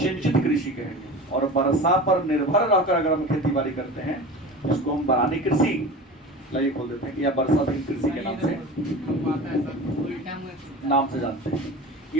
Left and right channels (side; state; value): both; normal; correlation 0.33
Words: कृषि कहेंगे। और वर्षा पर निर्भर रहकर अगर हम खेती बाड़ी करते हैं उसको हम बरानी कृषि लाइए खोल देते हैं, या वर्षाधीन कृषि के नाम से जानते हैं।